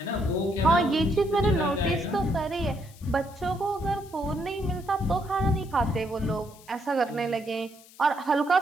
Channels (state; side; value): noise; left; hiss, 23 dB below the sound